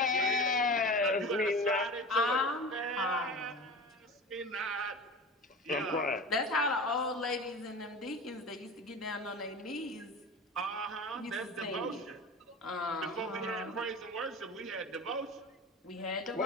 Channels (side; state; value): both; normal; correlation 0.33